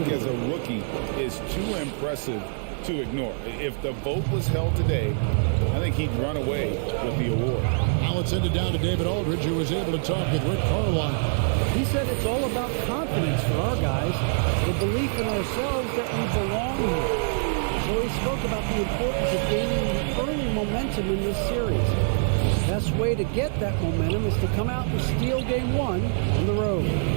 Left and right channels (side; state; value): left; silent; digital silence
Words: as a rookie is too impressive to ignore. If the vote was held today, I think he'd run away with the award. Now let's send it down to David Aldridge, who was able to talk with Rick Carlisle. He said it's all about confidence for our guys, the belief in ourselves that we belong here. So he spoke about the importance of gaining early momentum in this series. The best way to get that momentum is to come out and steal game one on the road.